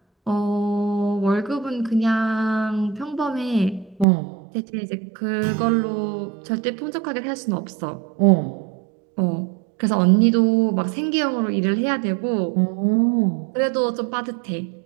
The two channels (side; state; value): left; drops out; at 4.0 s